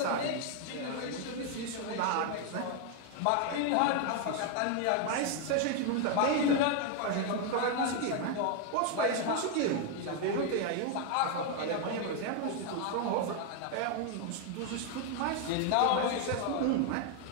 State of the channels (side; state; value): both; different; correlation 0.01